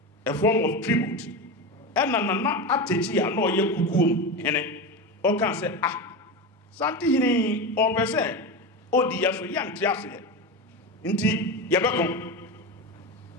a form of tribute ena na atechi ya no ye kukuom hene o kan say ah santi hini o be say odi ya so ya nte ase nti ye bekon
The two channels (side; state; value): both; normal; correlation 0.20